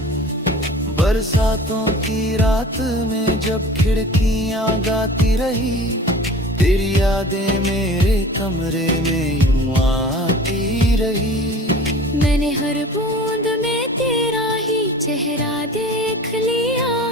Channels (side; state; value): both; normal; correlation 0.42